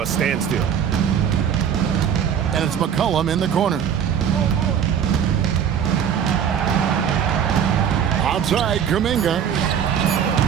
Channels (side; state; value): left; quieter; 8.4 dB